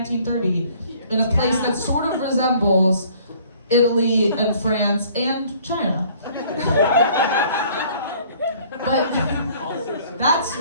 in a place that sort of resembles Italy and France and China. But that's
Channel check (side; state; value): both; inverted; correlation -0.56